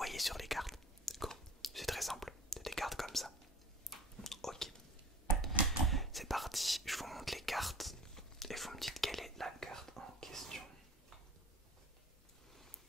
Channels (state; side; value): normal; both; correlation 0.45